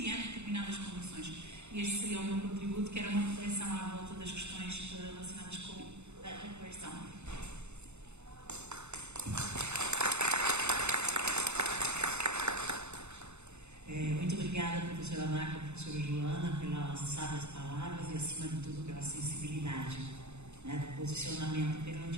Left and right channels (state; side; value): late; left; 0.82 ms